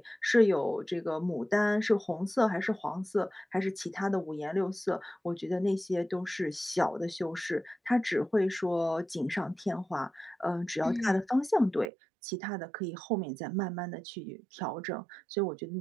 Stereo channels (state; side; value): drops out; left; at 11.9 s